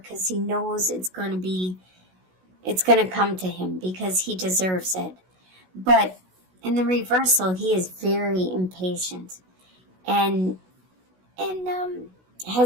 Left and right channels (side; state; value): left; late; 16 ms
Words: he knows it's going to come to him because he deserves it. But in the reversal, he is very impatient and